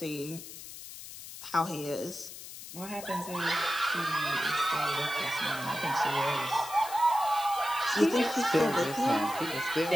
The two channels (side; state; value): left; noise; hiss, 13 dB below the sound